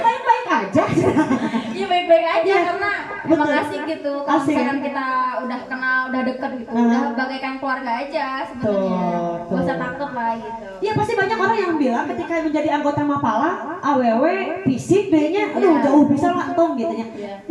aja. Iya baik-baik aja, karena emang asik gitu. Kalau Asik. misalkan kita udah kenal, udah deket gitu, udah bagaikan keluarga aja sebenarnya. Gak usah takut lah gitu. Iya pasti banyak orang yang bilang ketika menjadi anggota Mapala, AWW, fisik D-nya, aduh jauh bisa lah tong gitu ya.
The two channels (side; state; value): both; identical; correlation 1.00